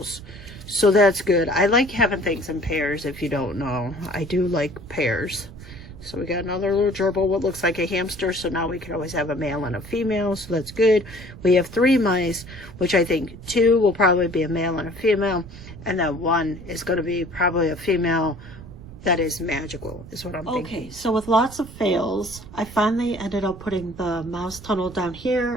So that's good. I like having things in pairs, if you don't know. I do like pairs. So we got another little gerbil, what looks like a hamster. So now we can always have a male and a female. So that's good. We have 3 mice, which I think 2 will probably be a male and a female. And then 1 is going to be probably a female that is magical, is what I'm thinking. Okay, so with lots of fails, I finally ended up putting the mouse tunnel down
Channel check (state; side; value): noise; right; rumble, 16 dB below the sound